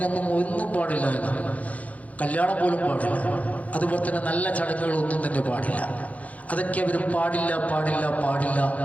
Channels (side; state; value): right; late; 0.069 ms